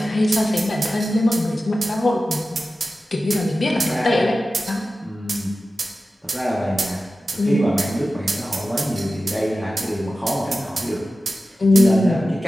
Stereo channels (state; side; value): normal; both; correlation 0.94